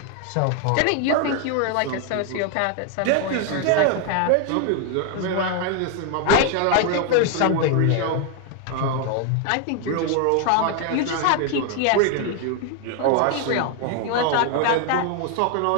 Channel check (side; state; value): both; different; correlation 0.00